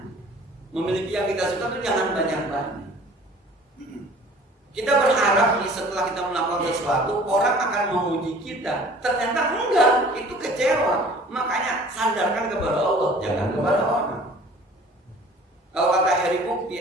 memiliki yang kita suka itu, jangan banyak-banyak. Kita berharap setelah kita melakukan sesuatu orang akan memuji kita, ternyata enggak, itu kecewa. Makanya sandarkan kepada Allah, jangan kepada orang. Kalau kata Heri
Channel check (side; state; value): both; normal; correlation 0.48